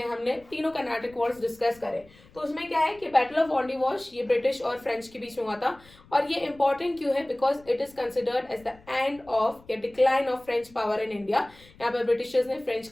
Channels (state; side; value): noise; left; rumble, 26 dB below the sound